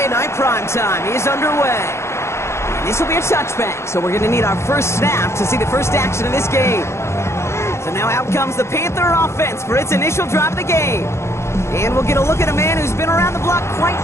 Night Prime Time is underway. And this will be a touchback, so we're going to need our first snap to see the first action of this game. So now out comes the Panther offense for its initial drive of the game. And we'll get a look at a man who's been around the block quite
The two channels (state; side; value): late; right; 0.13 ms